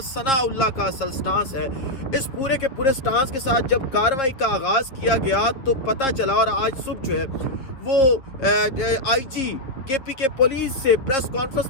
ثناء اللہ کا اصل سٹانس ہے۔ اس پورے کے پورے سٹانس کے ساتھ جب کارروائی کا آغاز کیا گیا تو پتہ چلا، اور آج صبح جو ہے وہ آئی جی کے پی کے پولیس سے پریس کانفرنس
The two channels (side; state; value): right; late; 7.4 ms